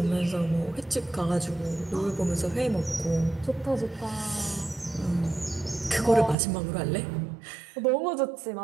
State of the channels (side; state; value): left; drops out; at 6.4 s